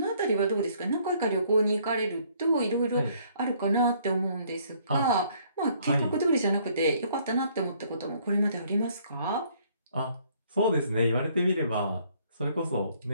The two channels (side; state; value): both; inverted; correlation -0.63